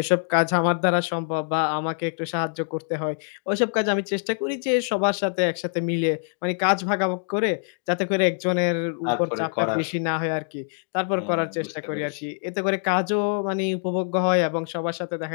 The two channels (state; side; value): silent; right; 60 dB below the other